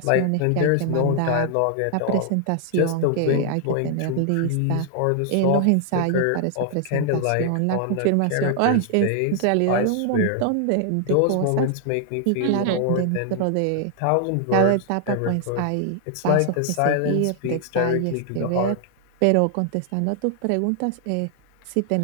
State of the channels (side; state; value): both; different; correlation 0.00